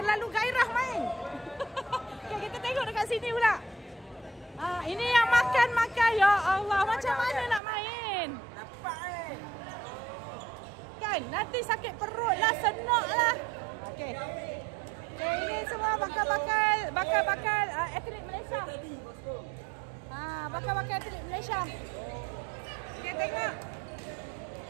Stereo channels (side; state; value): left; drops out; at 7.6 s